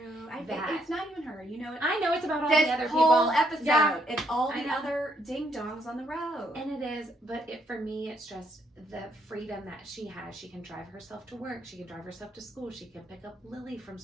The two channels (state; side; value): normal; both; correlation 0.73